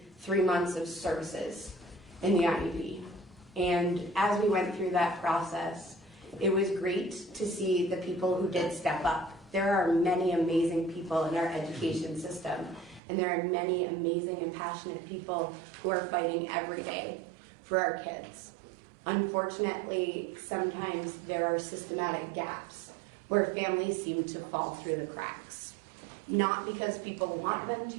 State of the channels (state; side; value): drops out; left; at 13.0 s